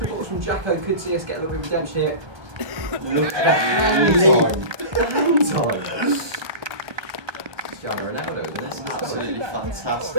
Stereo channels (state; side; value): late; left; 1.2 ms